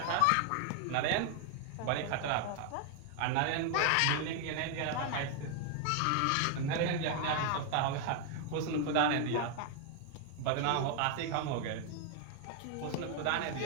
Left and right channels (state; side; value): different; both; correlation 0.00